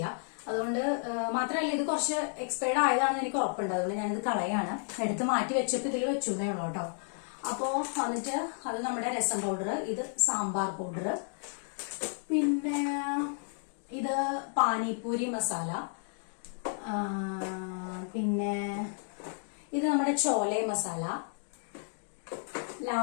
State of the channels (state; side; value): silent; right; 56 dB below the other